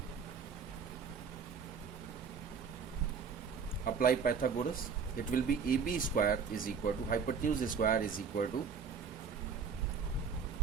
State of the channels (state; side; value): quieter; left; 5.9 dB